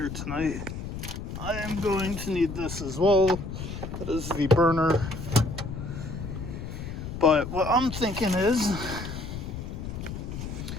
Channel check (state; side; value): noise; left; rumble, 7 dB below the sound